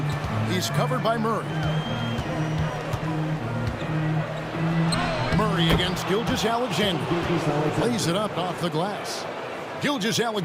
He's covered by Murray. Murray against Gilgeous-Alexander. Lays it up off the glass.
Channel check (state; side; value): identical; both; correlation 1.00